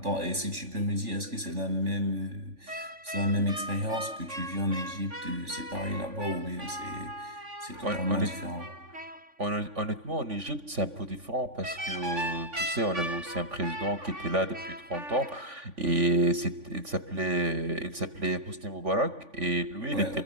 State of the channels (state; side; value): late; left; 3.5 ms